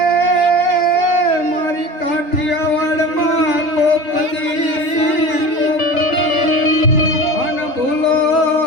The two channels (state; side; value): late; right; 3.3 ms